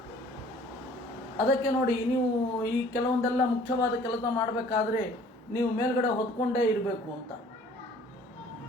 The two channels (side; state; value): both; normal; correlation 0.53